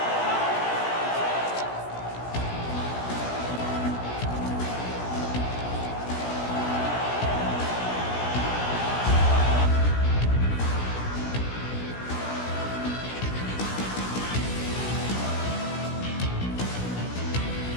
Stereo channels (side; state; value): right; late; 17 ms